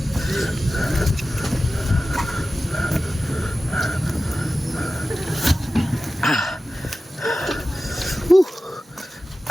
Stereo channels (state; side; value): normal; both; correlation 0.94